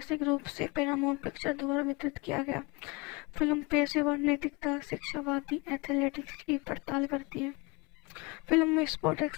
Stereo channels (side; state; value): right; quieter; 26.7 dB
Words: रूप से पैरामाउंट पिक्चर द्वारा वितरित किया गया। फिल्म पेशेवर नैतिकता, शिक्षावादी एथलेटिक्स की पड़ताल करती है। फिल्म में स्पॉट